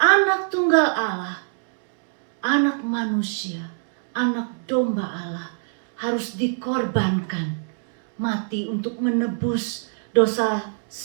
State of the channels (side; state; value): left; silent; digital silence